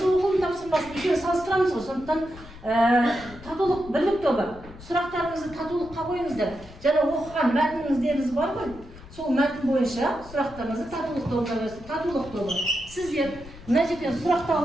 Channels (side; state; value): left; noise; rumble, 18 dB below the sound